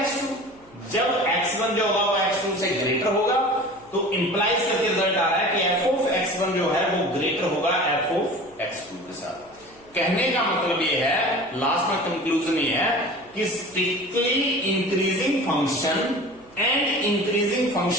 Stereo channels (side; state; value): right; noise; hum, 28 dB below the sound